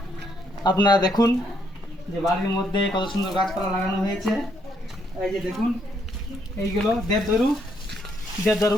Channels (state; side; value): normal; both; correlation 0.73